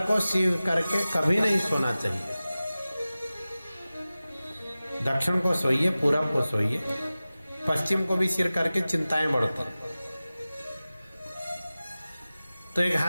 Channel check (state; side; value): inverted; both; correlation -0.96